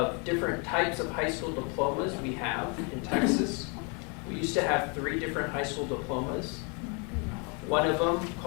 different types of high school diplomas we have in Texas. We used to have 3 different high school diplomas. One of them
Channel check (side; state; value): right; quieter; 34.6 dB